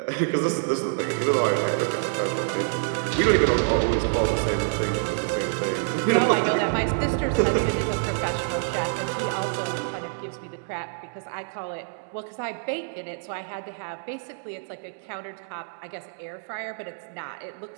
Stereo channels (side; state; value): left; silent; digital silence